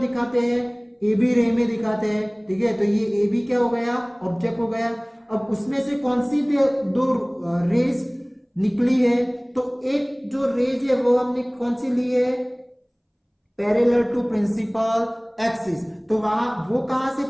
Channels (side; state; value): both; identical; correlation 1.00